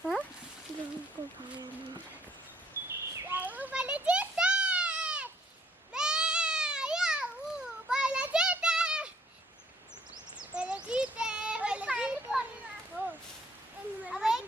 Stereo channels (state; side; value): normal; both; correlation 0.63